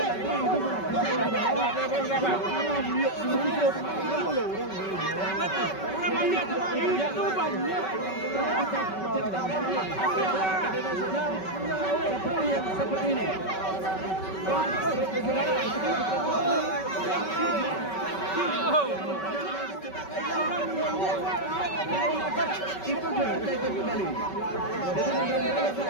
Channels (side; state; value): right; late; 5.3 ms